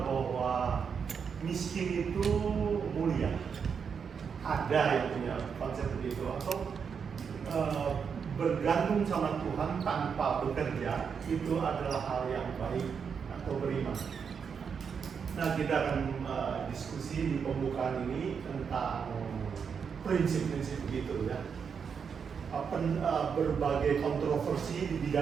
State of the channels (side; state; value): left; quieter; 6.5 dB